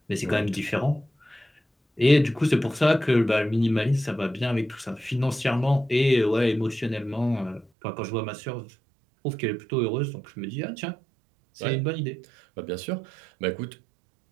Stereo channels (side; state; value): left; drops out; at 7.7 s